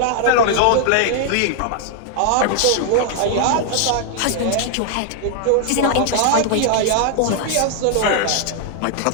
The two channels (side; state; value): both; different; correlation 0.00